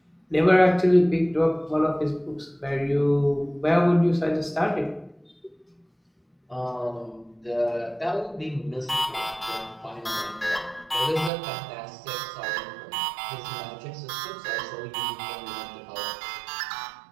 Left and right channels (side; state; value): left; drops out; at 11.3 s